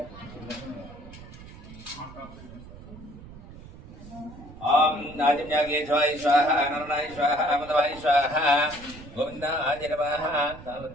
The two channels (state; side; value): noise; right; rumble, 17 dB below the sound